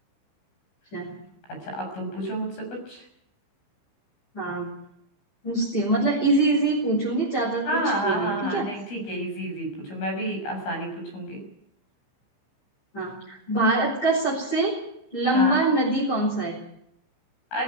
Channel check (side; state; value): right; late; 15 ms